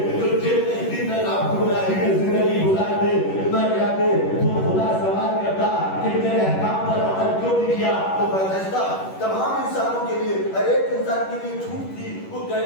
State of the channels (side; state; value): right; late; 11 ms